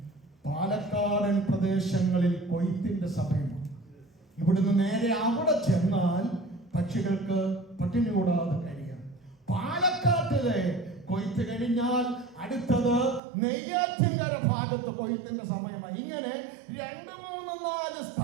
പാലക്കാടൻ പ്രദേശങ്ങളിൽ കൊയ്ത്തിന്റെ സമയമാണ്. ഇവിടുന്ന് നേരെ അവിടെ ചെന്നാൽ പക്ഷികൾക്ക് പട്ടിണി കൂടാതെ കഴിയാം. പാലക്കാട്ടിലെ കൊയ്ത്ത് കഴിഞ്ഞാൽ അടുത്തത് നെയ്യാറ്റിൻകര ഭാഗത്ത് കൊയ്ത്തിന്റെ സമയമായി. ഇങ്ങനെ 2, 3, 4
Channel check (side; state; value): left; drops out; at 13.2 s